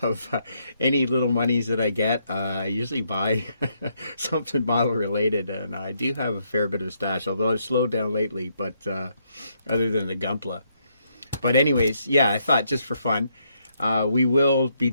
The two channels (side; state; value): both; inverted; correlation -0.75